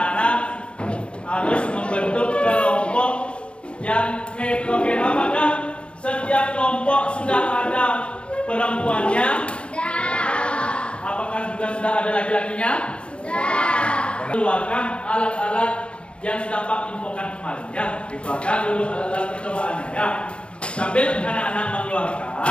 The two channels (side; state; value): right; late; 0.058 ms